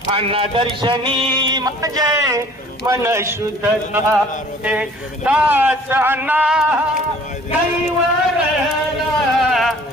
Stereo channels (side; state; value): both; normal; correlation 0.52